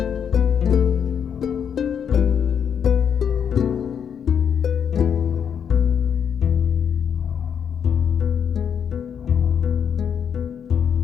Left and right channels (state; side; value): quieter; right; 7.8 dB